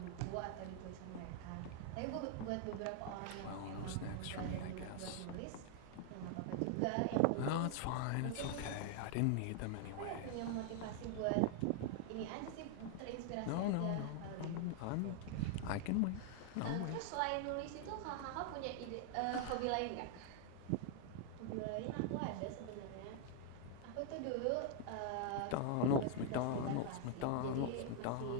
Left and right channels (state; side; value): different; both; correlation 0.00